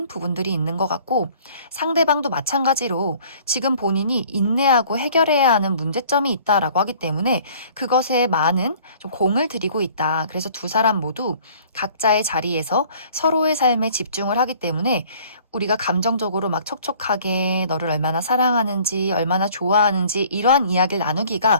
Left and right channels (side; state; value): both; inverted; correlation -0.54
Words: 부분들이 있는 것 같고 상대방도 마찬가지로 지금 본인이 인내하고 해결해야 하는 문제점이 있다라고 하기 때문에 그것에 많은 좀 공을 들이고 있다. 그래서 두 사람 모두 각자의 자리에서 서로의 삶에 집중을 하기 때문에 우리가 감정적으로 막 촉촉하게 너를 얼마나 사랑하는지 얼마나 좋아하는지 이러한 이야기를 나누기가